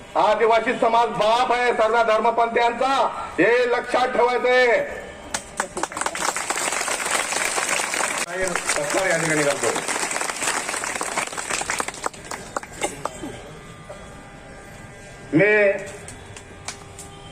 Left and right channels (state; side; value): identical; both; correlation 1.00